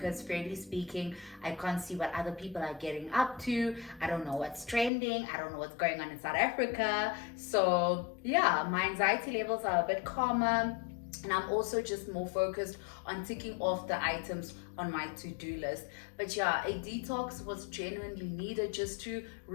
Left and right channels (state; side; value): drops out; right; at 4.9 s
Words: fairly speaking, I can't see what other people are getting up to. I don't know what's trending. I don't know what's going on in South Africa. So yeah, my anxiety levels are a bit calmer. And I'm also just more focused on ticking off the items on my to-do list. But yeah, a detox was genuinely needed just to